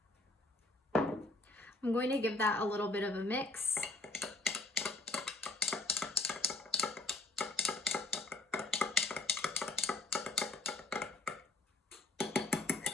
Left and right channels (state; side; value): quieter; right; 3.0 dB